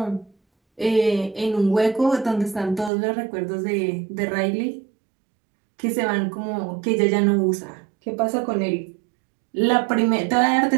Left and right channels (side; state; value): left; drops out; at 2.9 s